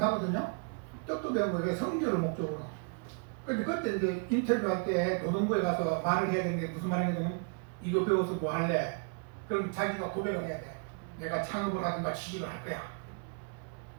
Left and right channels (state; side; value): quieter; left; 39.4 dB